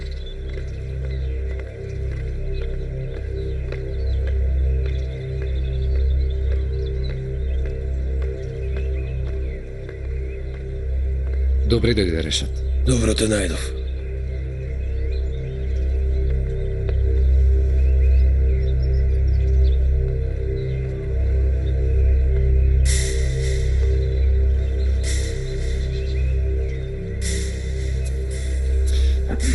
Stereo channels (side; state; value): both; identical; correlation 1.00